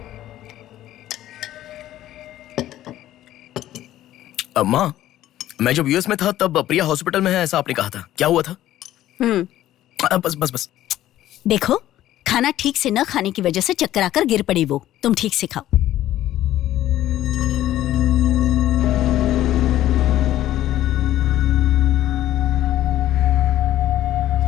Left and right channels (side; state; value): right; quieter; 13.5 dB